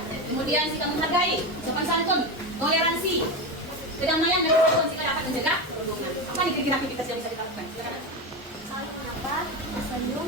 Kemudian sikap menghargai, sopan santun, toleransi, kedamaian dan kesatuan sehingga dapat mencegah perundungan. Apa nih kira-kira aktivitas yang bisa kita lakukan? Silakan. Saling menyapa, senyum.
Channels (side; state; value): both; normal; correlation 0.17